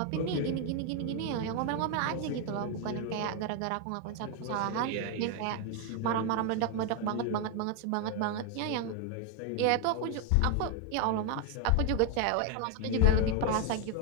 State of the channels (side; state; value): both; different; correlation 0.01